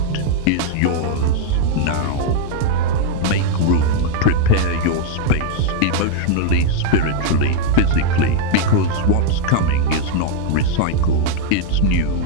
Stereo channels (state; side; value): different; both; correlation 0.00